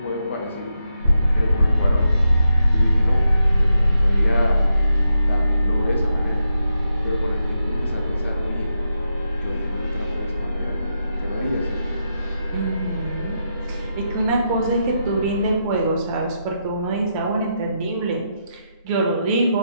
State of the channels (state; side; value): inverted; both; correlation -0.84